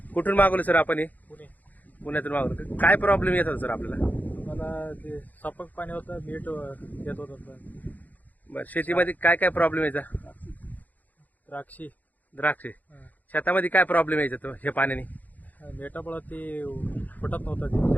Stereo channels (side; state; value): right; late; 0.080 ms